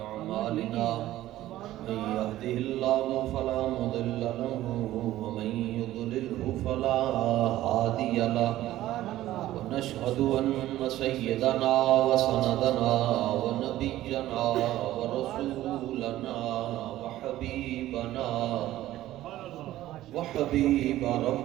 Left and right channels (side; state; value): left; quieter; 14.7 dB